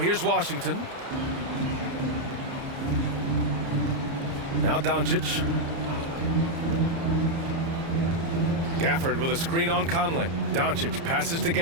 Washington. Now Doncic. Gafford with a screen on Conley. Doncic passes to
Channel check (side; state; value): left; late; 30 ms